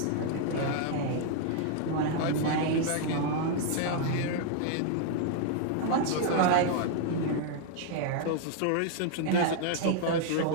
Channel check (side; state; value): both; different; correlation 0.00